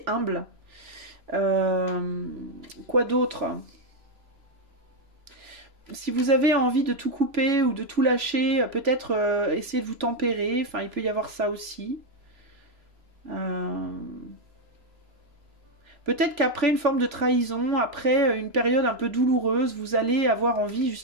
humble. Quoi d'autre ? Si vous avez envie de tout couper ou de tout lâcher, peut-être essayer de vous tempérer. Enfin, il peut y avoir ça aussi. Peut-être qu'après une forme de trahison, après une période un peu douloureuse, vous allez avoir envie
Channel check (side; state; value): left; late; 3.0 ms